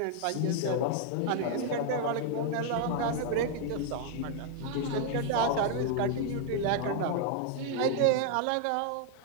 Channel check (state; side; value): different; both; correlation 0.00